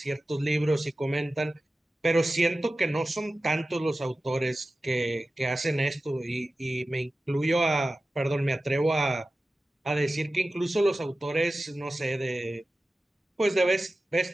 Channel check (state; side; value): normal; both; correlation 0.95